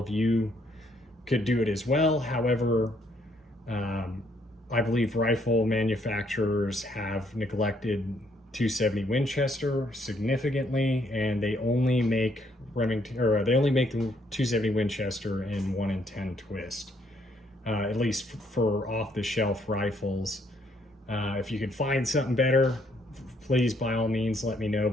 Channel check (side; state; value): both; normal; correlation 0.69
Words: you could do it as well. However, I believe rifle manufacturers have neglected 270 Winchester significantly, and they only make Remington, or they only make the 270 Winchester in 1 in 10 twist, at least for off-the-shelf rifles. If you could find something better, please by all means let me know,